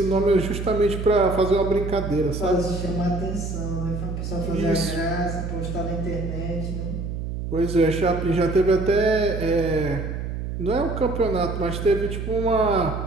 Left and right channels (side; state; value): right; noise; hum, 5 dB below the sound